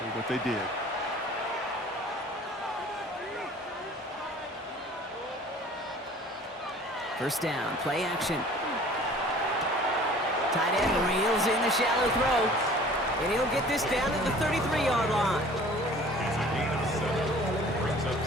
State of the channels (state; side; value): normal; both; correlation 0.48